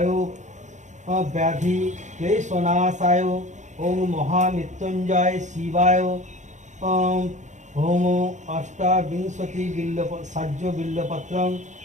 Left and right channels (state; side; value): late; left; 0.35 ms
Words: ব্যাধি ক্লেশনাশায় ওম মহামৃত্যুঞ্জয় শিবায় হোম অষ্টাবিংশতি সাহ্য বিল্লপত্রং